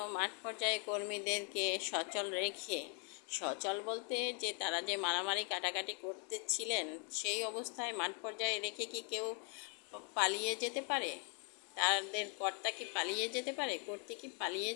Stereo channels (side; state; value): right; quieter; 38.2 dB